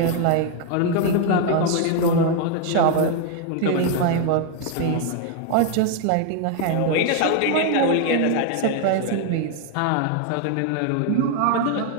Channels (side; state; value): both; different; correlation 0.01